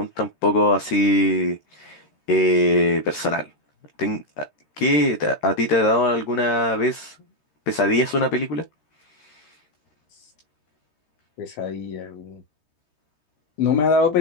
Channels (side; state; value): right; late; 13 ms